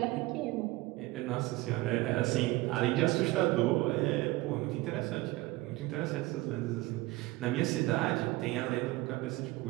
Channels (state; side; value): quieter; left; 19.9 dB